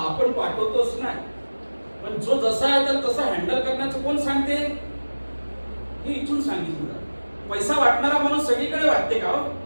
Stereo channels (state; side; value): inverted; both; correlation -1.00